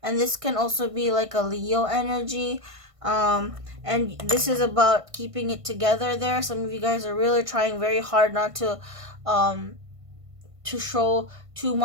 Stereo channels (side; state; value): left; late; 1.5 ms